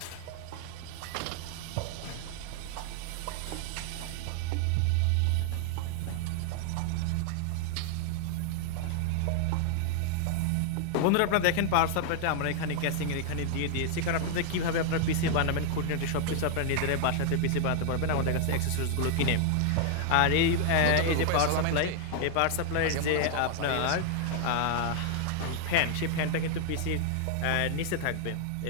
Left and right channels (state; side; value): different; both; correlation 0.00